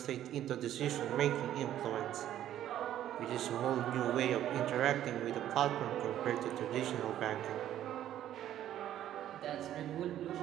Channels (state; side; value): quieter; left; 11.8 dB